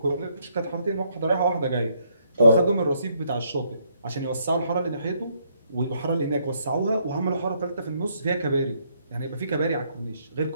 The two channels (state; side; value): inverted; both; correlation -0.72